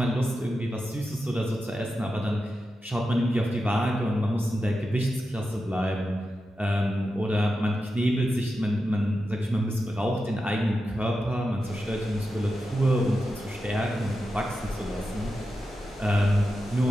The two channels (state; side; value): normal; both; correlation 0.90